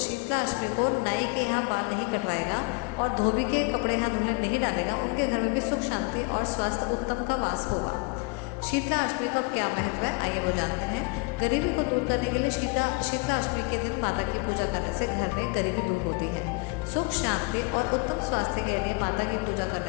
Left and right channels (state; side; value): quieter; right; 29.3 dB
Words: शीतला अष्टमी को नाई के यहाँ बाल नहीं कटवाएगा और धोबी के कपड़े यहाँ धुलने नहीं डालेगा, उनके घर में भी सुख, शांति और स्वास्थ्य उत्तम का वास होगा। शीतला अष्टमी का क्या महत्व है, आइए वो जानते हैं। गरीबी को दूर करने के लिए शीतला अष्टमी के दिन माता की पूजा करने से घर में गरीबी दूर होती है। सुख, शांति और उत्तम स्वास्थ्य के लिए माता की पूजा